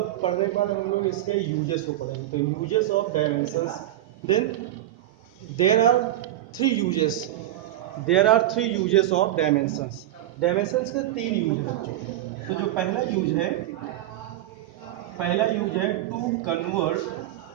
के बाद हम लोग इसके यूजेस को पढ़ेंगे। तो uses of dimensions, then there are three uses of dimensions. Dimensions के तीन यूज है बच्चों। तो जो पहला यूज है to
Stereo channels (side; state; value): left; quieter; 13.8 dB